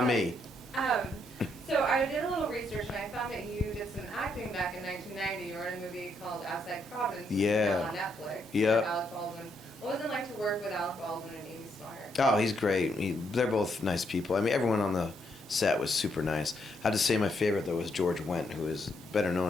me. So I did a little research and I found that you did some acting back in 1990. You were in a movie called Outside Providence, which is now on Netflix. Yeah. With Alec Baldwin. What was it like to work with Alec Baldwin and Amy Smart? Oh, he's great. They're both nice people. I mean, everyone on the set was super nice. I have to say my favorite, though, was George Wendt, who is better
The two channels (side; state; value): both; normal; correlation 0.76